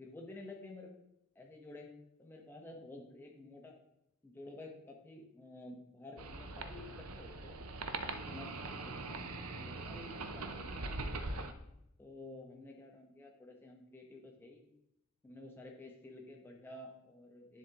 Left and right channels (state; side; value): normal; both; correlation 0.40